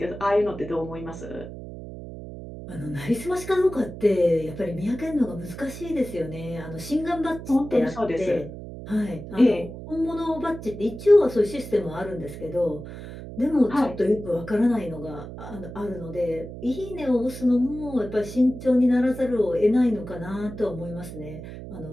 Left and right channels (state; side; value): noise; right; hum, 11 dB below the sound